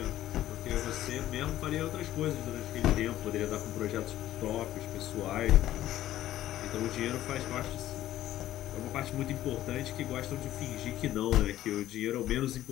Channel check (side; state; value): right; quieter; 13.6 dB